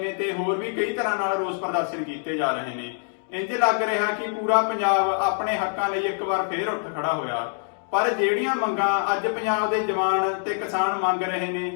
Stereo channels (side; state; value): right; silent; digital silence